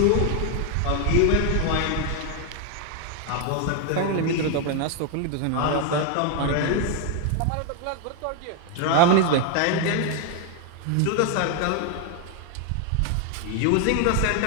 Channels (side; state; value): both; different; correlation 0.01